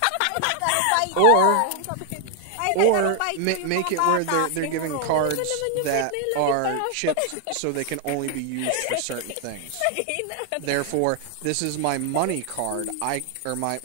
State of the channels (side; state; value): both; different; correlation 0.00